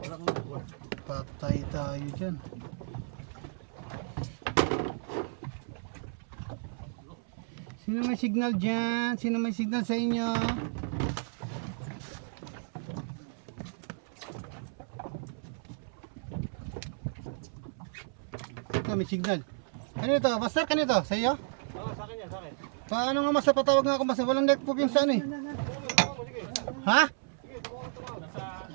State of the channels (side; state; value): left; silent; 56 dB below the other